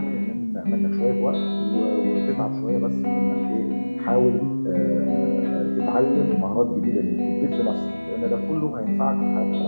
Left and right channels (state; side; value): inverted; both; correlation -1.00